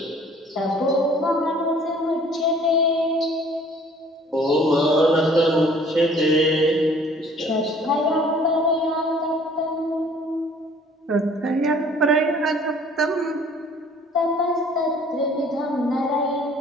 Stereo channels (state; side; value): normal; both; correlation 0.54